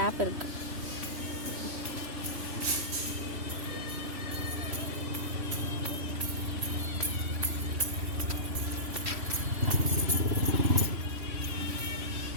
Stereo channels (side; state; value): left; late; 3.1 ms